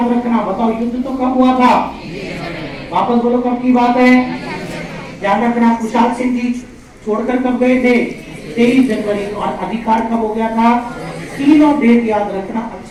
रखना। बताओ युद्ध तो कब हुआ था? वापस बोलो कब की बात है? ध्यान रखना, कुशाल सिंह जी छोड़कर कब गए थे? 23 जनवरी। और अधिकार कब हो गया था? तीनों डेट याद रखना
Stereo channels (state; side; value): identical; both; correlation 1.00